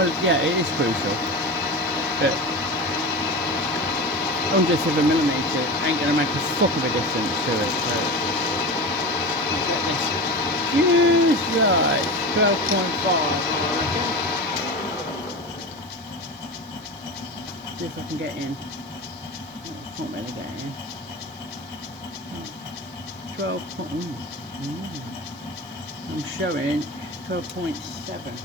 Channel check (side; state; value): right; noise; hiss, 29 dB below the sound